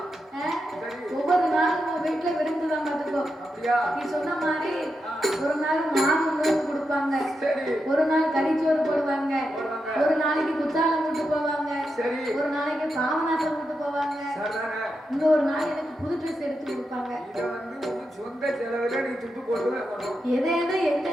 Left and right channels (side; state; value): both; normal; correlation 0.87